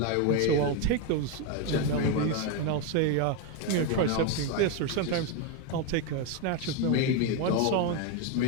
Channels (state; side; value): different; both; correlation 0.02